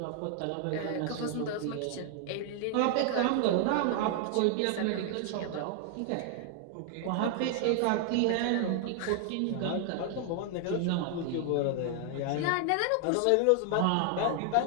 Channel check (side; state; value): both; different; correlation 0.00